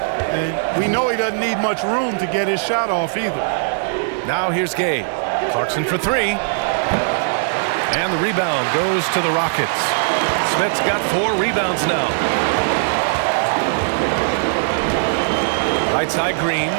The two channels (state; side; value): silent; left; digital silence